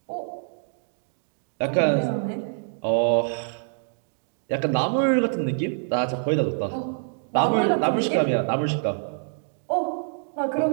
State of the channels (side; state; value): left; silent; digital silence